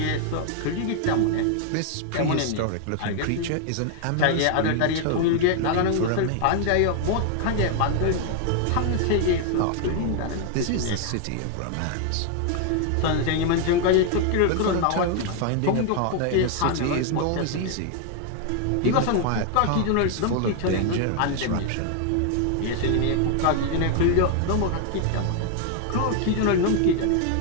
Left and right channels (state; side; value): different; both; correlation 0.00